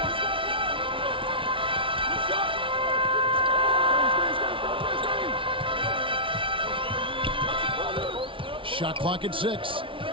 Shot clock at 6.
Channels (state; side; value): late; left; 0.25 ms